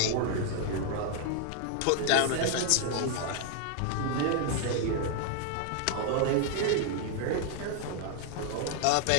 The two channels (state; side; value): different; both; correlation 0.00